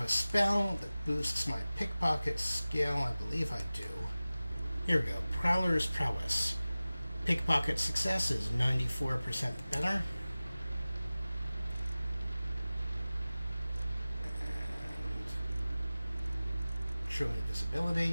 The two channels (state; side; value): inverted; both; correlation -0.97